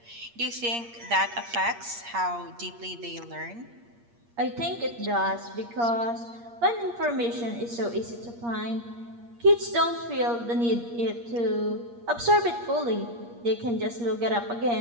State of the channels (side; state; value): left; late; 8.5 ms